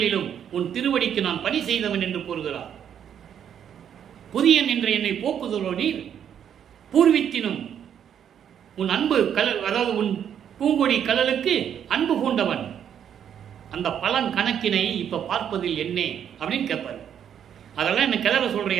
உன் திருவடிக்கு நான் பணி செய்தவன் என்று கூறுகிறார். புதியன் என்ற என்னை போக்குதலோ நீர், பூர்வித்தினும் உன் அன்பு கலல், அதாவது உன் பூங்கொடி கலலுக்கு அன்பு கூண்டவன். அந்த பலன் கணக்கினை இப்ப பார்ப்பதில் என்ன அப்படின்னு கேட்பாரு. அதெல்லாம் என்ன கிளற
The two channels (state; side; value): quieter; left; 9.0 dB